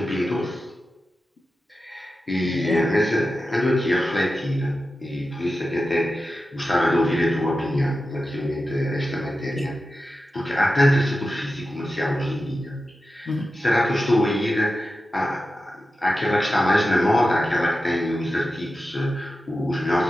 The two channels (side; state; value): both; normal; correlation 0.92